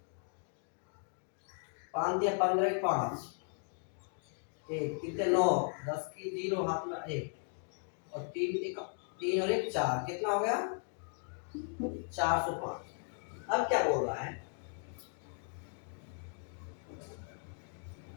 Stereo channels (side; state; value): right; silent; 53 dB below the other